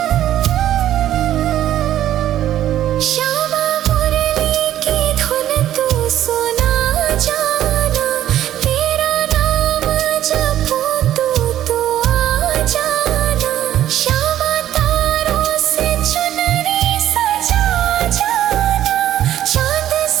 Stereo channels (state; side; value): quieter; left; 12.1 dB